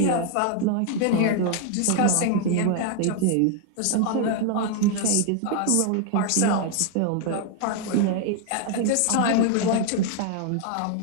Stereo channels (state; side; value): different; both; correlation 0.00